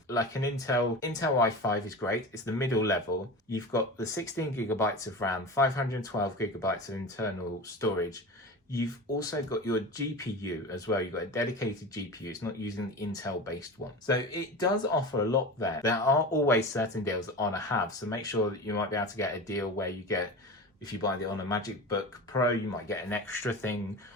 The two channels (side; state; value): both; normal; correlation 0.30